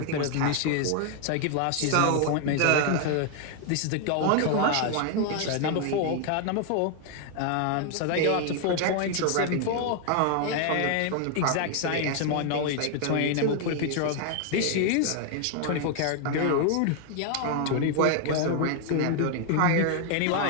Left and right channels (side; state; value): both; different; correlation 0.00